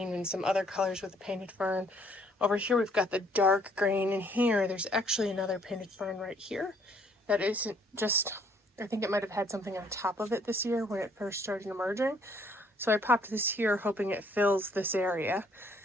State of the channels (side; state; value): both; normal; correlation 0.64